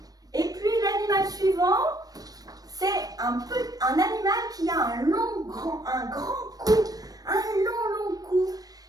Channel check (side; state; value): left; late; 0.18 ms